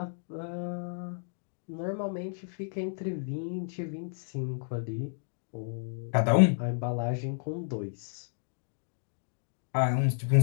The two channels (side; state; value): right; silent; digital silence